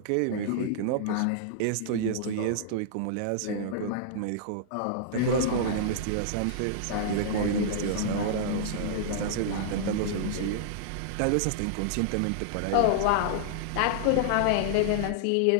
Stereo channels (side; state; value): both; different; correlation -0.01